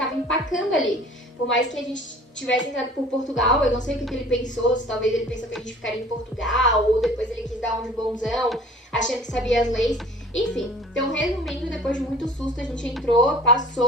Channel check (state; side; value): normal; both; correlation 0.48